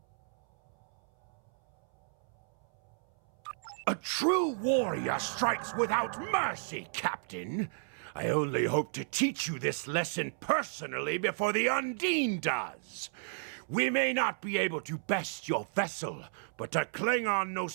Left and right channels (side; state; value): left; silent; 56 dB below the other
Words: A true warrior strikes without mercy, Captain. I only hope to teach you this lesson personally before the Undine does. We may not be able to best your vessel, but a Klingon